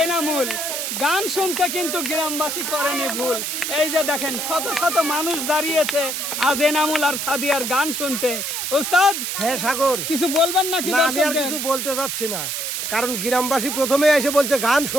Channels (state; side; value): noise; right; hiss, 3 dB below the sound